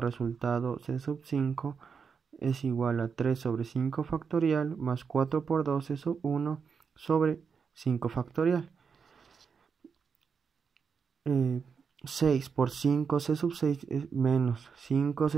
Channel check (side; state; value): left; quieter; 6.0 dB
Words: c sub 5 es igual a 3 sobre 5 factorial más 4 por 2 c sub 1 sobre 5 factorial. 6 por 5 c sub 6 es menos 5